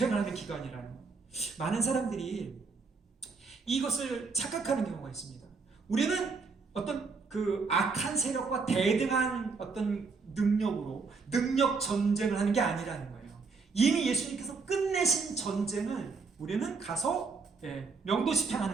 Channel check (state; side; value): quieter; left; 4.6 dB